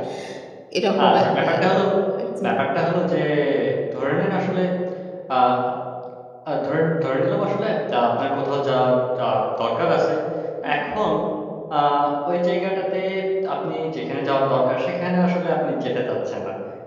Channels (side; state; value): both; identical; correlation 1.00